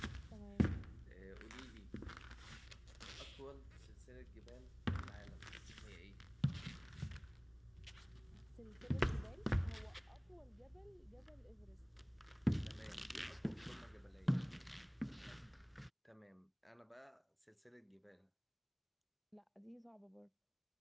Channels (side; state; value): both; identical; correlation 1.00